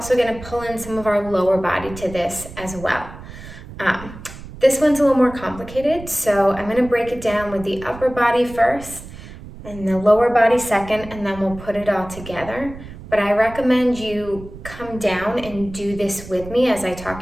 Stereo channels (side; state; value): right; noise; rumble, 15 dB below the sound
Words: going to pull in some of our lower body to this as well. This one's a little more complicated, so I'm going to break it down with the upper body first and the lower body second, and then we'll put it all together. But I recommend you come down and do this with me as I